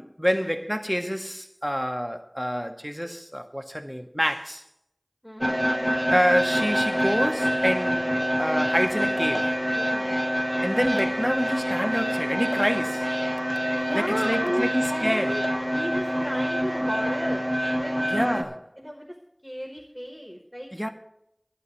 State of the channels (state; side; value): identical; both; correlation 1.00